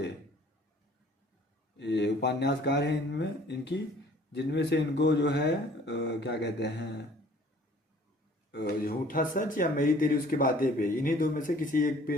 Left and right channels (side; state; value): both; normal; correlation 0.54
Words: ये उपन्यासकार हैं इनमें इनकी, जिनमें से इनको जो है क्या कहते हैं, झूठा सच या मेरी तेरी उसकी बातें पे, इन्हीं 2 में से किसी एक पे